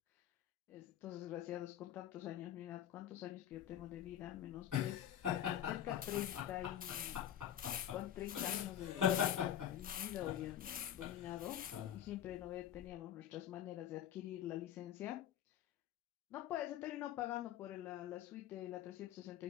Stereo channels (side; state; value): right; quieter; 10.8 dB